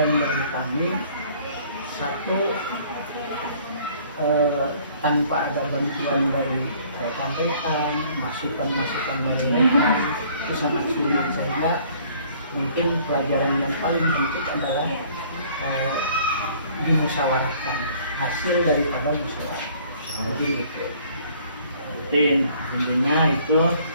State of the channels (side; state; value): both; inverted; correlation -0.57